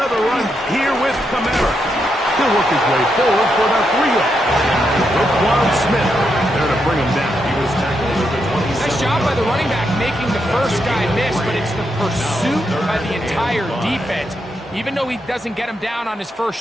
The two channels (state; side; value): normal; both; correlation 0.82